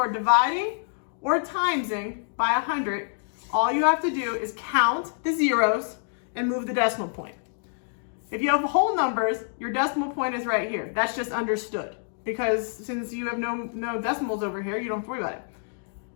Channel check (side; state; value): right; silent; digital silence